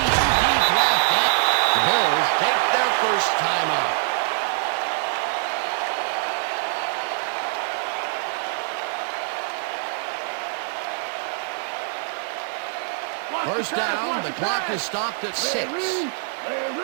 left, and the Bills take their first timeout. First down, the clock is stopped at 6.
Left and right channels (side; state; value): left; silent; 59 dB below the other